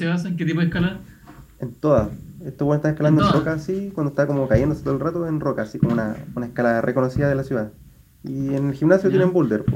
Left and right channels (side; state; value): both; identical; correlation 1.00